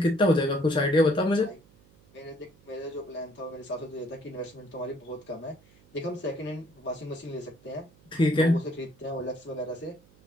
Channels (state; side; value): noise; right; hum, 28 dB below the sound